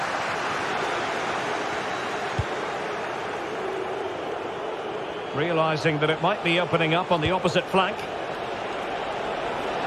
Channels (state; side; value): identical; both; correlation 1.00